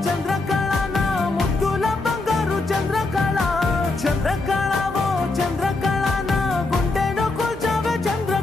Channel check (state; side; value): quieter; right; 3.3 dB